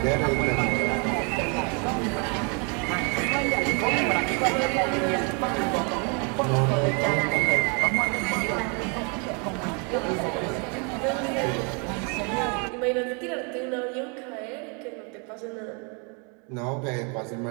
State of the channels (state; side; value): quieter; left; 34.7 dB